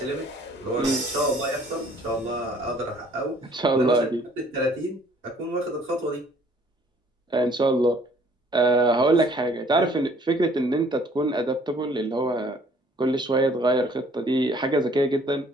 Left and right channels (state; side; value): normal; both; correlation 0.58